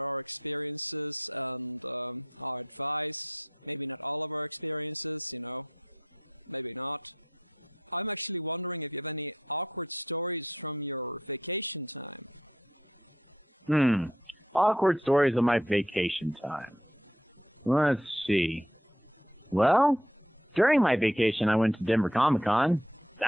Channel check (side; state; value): both; normal; correlation 0.69